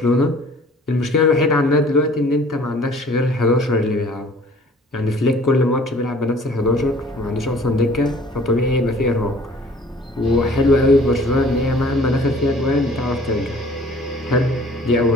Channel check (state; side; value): normal; both; correlation 0.52